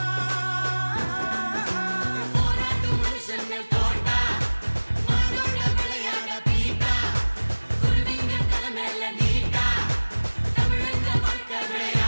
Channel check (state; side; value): inverted; both; correlation -1.00